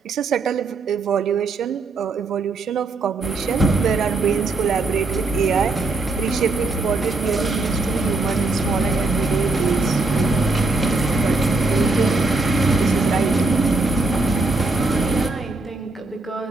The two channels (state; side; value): quieter; left; 3.4 dB